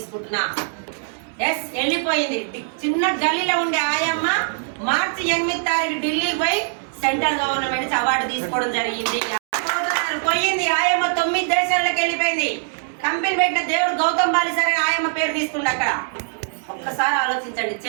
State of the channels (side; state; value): left; silent; digital silence